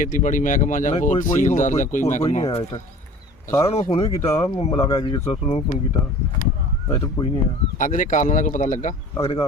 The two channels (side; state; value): both; normal; correlation 0.44